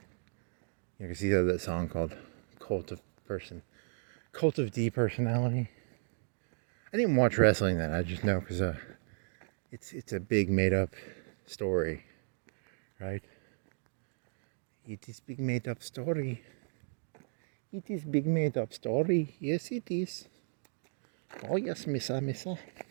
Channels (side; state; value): left; silent; digital silence